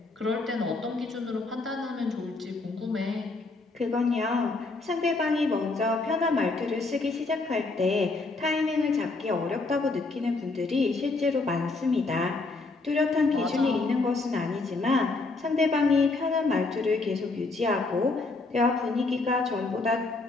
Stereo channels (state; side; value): quieter; right; 3.5 dB